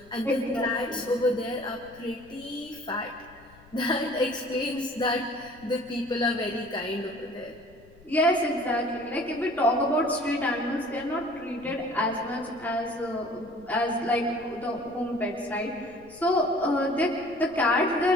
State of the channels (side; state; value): left; noise; rumble, 25 dB below the sound